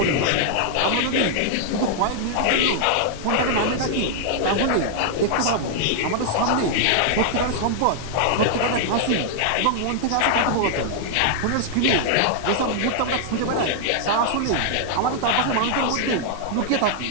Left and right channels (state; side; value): different; both; correlation -0.01